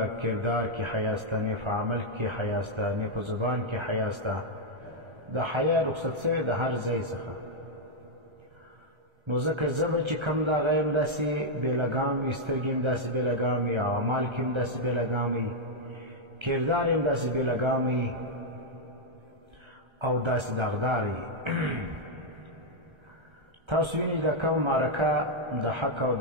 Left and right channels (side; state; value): left; late; 1.3 ms